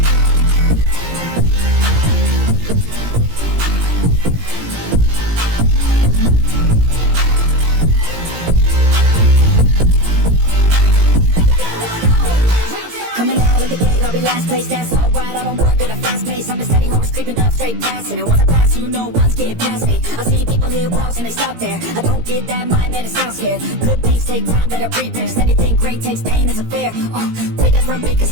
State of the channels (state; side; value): late; left; 17 ms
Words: Coming out of the gate, I'll be last place, that's alright. I don't work at a fast pace, I'm a steady horse creeping up straight past it. And once I pass, you know one's getting past me. I see people hit walls and they stop there. I don't get that mind, man, it sounds scared. Good things take time, better prepare. Anything great takes pain, it's a fair. Take it from me, cause